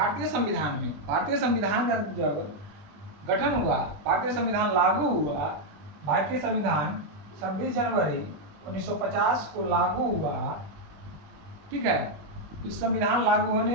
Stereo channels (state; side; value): late; left; 20 ms